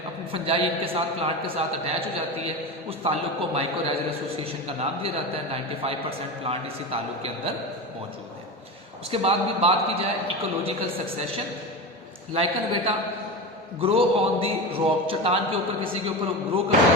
अपनी फंजाई इनके साथ, प्लांट के साथ अटैच हो जाती है, उस ताल्लुक को माइकोराइजल एसोसिएशन का नाम दिया जाता है। 95% प्लांट इसी ताल्लुक के अंदर मौजूद है। उसके बाद भी बात की जाए इकोलॉजिकल सक्सेशन, लाइकन बेटा ग्रो ऑन दी रॉक, चट्टान के ऊपर, किसी के ऊपर ग्रो कर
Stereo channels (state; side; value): normal; both; correlation 0.23